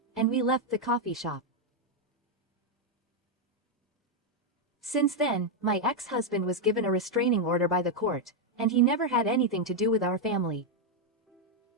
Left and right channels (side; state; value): both; normal; correlation 0.00